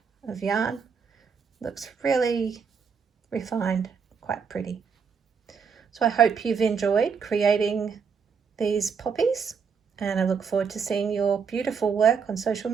of yarn, looks really refined, quite pretty. So I hope you've enjoyed creating these poppies, and I look forward to seeing your beautiful work on social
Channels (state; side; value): quieter; left; 6.1 dB